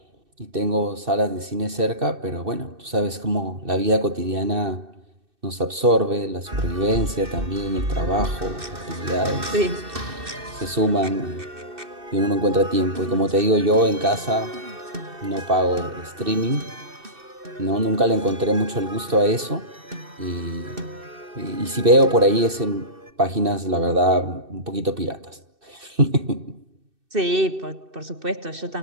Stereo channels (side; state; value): left; late; 2.6 ms